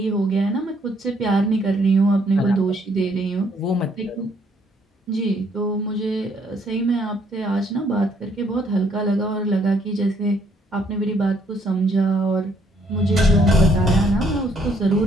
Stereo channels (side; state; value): both; normal; correlation 0.68